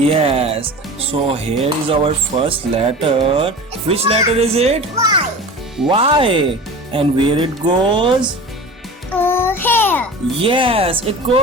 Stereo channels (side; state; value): both; normal; correlation 0.35